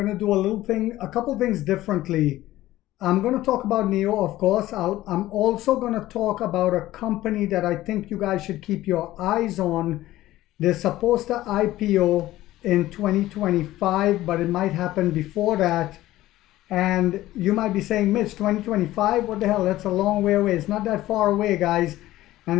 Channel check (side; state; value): right; quieter; 15.6 dB